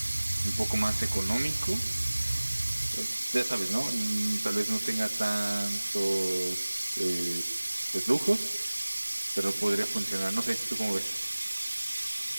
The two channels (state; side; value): inverted; both; correlation -1.00